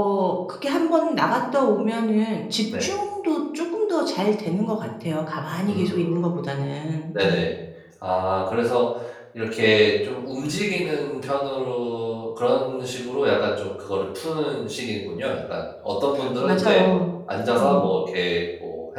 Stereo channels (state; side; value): identical; both; correlation 1.00